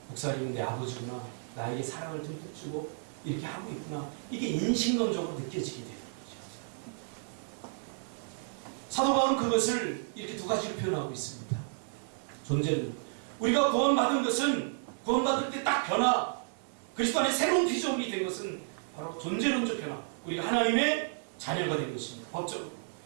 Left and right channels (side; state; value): left; silent; 56 dB below the other